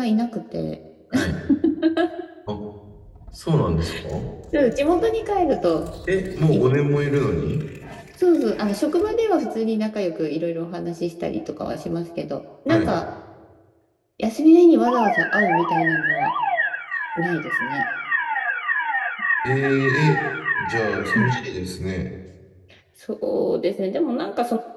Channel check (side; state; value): both; identical; correlation 1.00